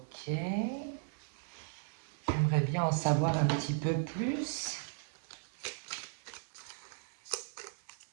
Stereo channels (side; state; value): left; silent; 53 dB below the other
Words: J'aimerais bien en savoir un petit peu plus.